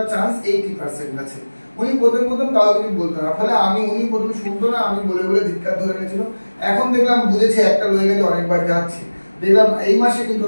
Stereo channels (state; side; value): inverted; both; correlation -1.00